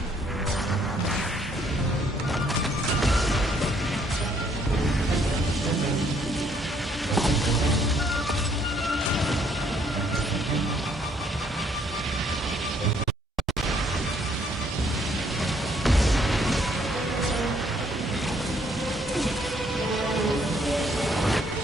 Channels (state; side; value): normal; both; correlation 0.66